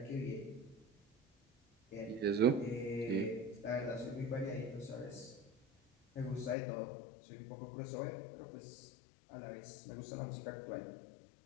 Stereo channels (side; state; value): right; drops out; at 6.6 s